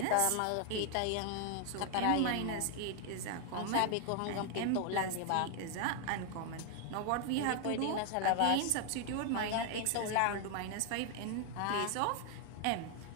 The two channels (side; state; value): both; different; correlation 0.00